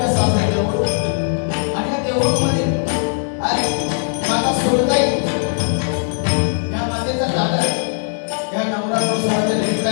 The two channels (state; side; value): silent; right; 62 dB below the other